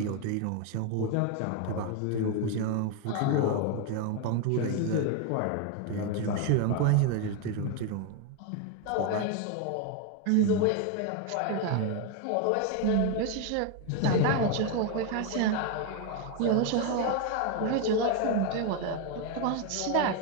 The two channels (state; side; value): different; both; correlation 0.01